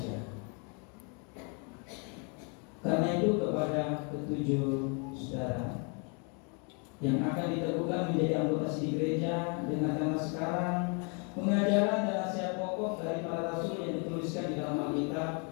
Karena itu kepada ketujuh saudara yang akan diteguhkan menjadi anggota CD gereja, dengarkanlah sekarang pengajaran dan nasihat pokok dari para rasul yang dituliskan di dalam Alkitab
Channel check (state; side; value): quieter; right; 36.2 dB